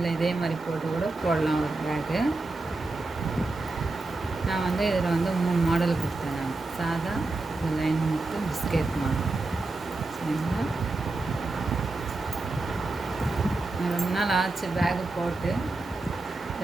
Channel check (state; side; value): quieter; left; 3.2 dB